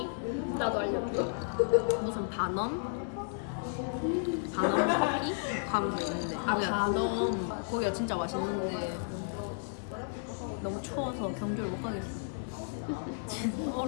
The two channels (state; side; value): silent; right; digital silence